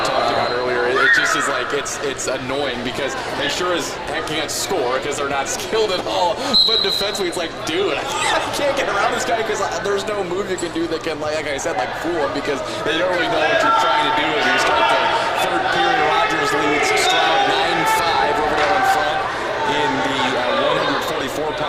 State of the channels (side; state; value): both; identical; correlation 1.00